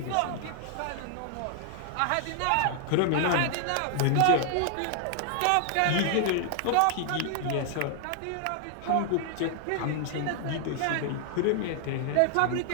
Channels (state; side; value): different; both; correlation -0.01